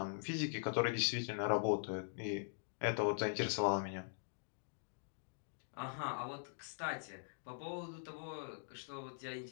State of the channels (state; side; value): silent; right; digital silence